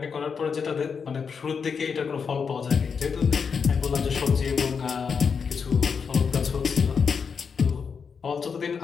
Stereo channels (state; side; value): quieter; right; 6.0 dB